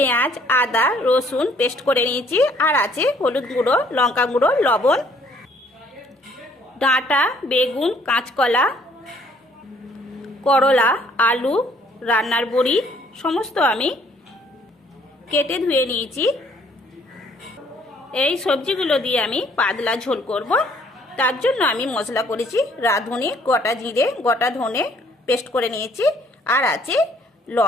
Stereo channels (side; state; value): both; normal; correlation 0.62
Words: আদা, রসুন পেস্ট করে নিয়েছি, আর আছে হলুদ গুঁড়ো, লঙ্কা গুঁড়ো, লবণ, ডাঁটা, বেগুন, কাঁচকলা, করলা, আলু, রান্নার বড়ি সমস্ত আমি কেটে ধুয়ে নিয়েছি। এই সবজিগুলো দিয়ে আমি পাতলা ঝোল করব। তার জন্য আমি মশলা করেছি রাঁধুনি, গোটা জিরে, গোটা ধনে পেস্ট করে নিয়েছি, আর আছে